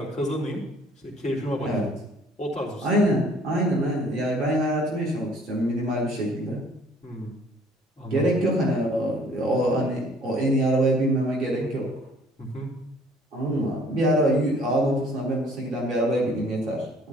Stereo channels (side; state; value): both; normal; correlation 0.57